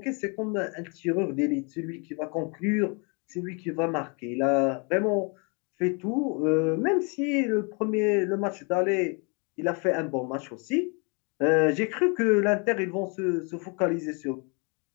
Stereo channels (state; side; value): quieter; right; 34.0 dB